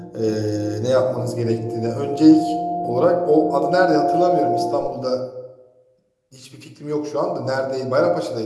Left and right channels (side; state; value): both; identical; correlation 1.00